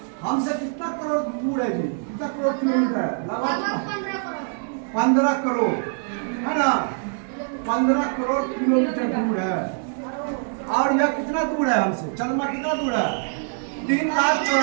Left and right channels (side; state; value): left; silent; 63 dB below the other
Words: हमसे कितना करोड़ दूर है जी? कितना करोड़ किलोमीटर है? लगभग 15 करोड़ है ना? 15 करोड़ किलोमीटर दूर है। और यह कितना दूर है हमसे? चंद्रमा कितना दूर है?